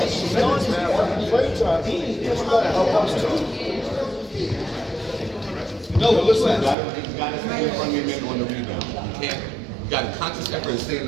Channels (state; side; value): drops out; left; at 6.8 s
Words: see minutes, man. I want to play time. It's going to help us too. No, listen. You got to stay in front of your man on the rebound. You can't. You got to conscious effort and stay in